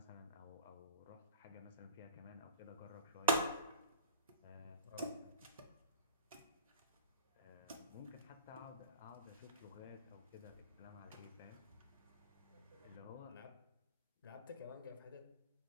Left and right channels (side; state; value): both; inverted; correlation -0.38